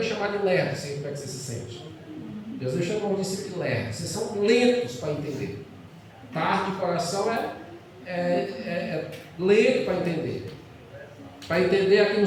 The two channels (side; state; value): both; identical; correlation 1.00